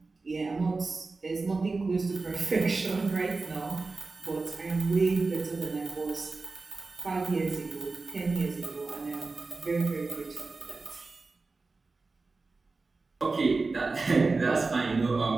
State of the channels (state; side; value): quieter; left; 3.8 dB